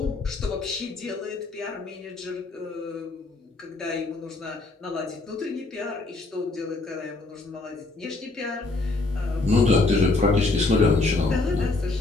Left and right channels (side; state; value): right; quieter; 3.3 dB